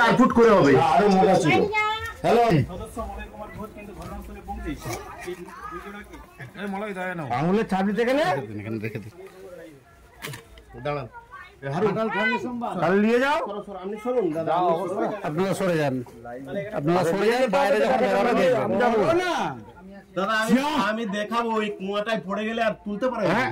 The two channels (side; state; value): both; identical; correlation 1.00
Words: ফুট করে হবে। আঙুলের ছাপ দিতে গেলে দাঁড়ান, নিয়ে যাও। আপনি সরুন দাদা, আপনারা সরে যান, বাইরে যখন না দাদা আমি দেখাবো। ওই কুয়াটায় পড়ে গেলে আর তুলতে পারে না।